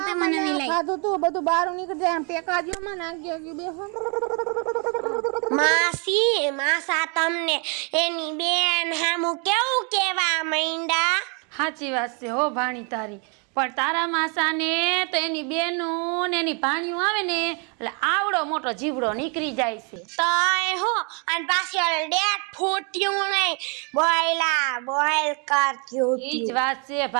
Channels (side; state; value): left; quieter; 35.5 dB